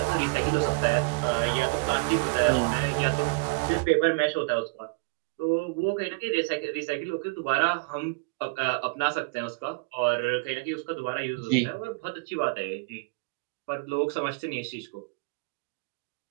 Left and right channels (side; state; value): left; quieter; 30.3 dB